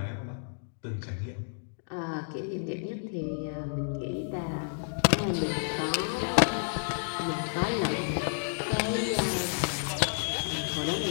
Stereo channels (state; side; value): silent; right; digital silence